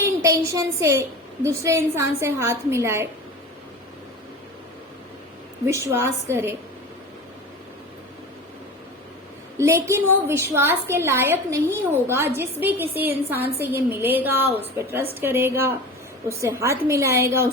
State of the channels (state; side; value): normal; both; correlation 0.32